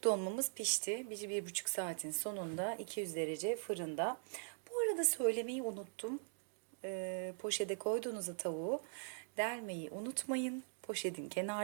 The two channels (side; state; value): left; silent; digital silence